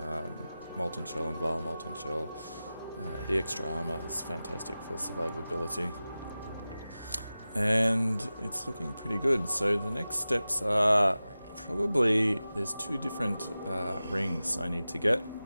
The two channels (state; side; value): inverted; both; correlation -0.95